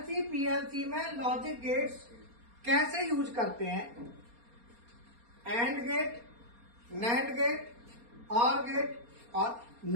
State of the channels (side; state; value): left; late; 4.3 ms